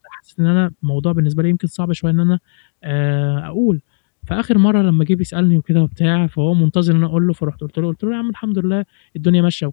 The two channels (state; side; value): silent; right; digital silence